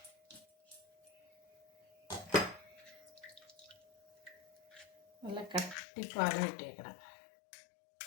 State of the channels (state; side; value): drops out; right; at 5.8 s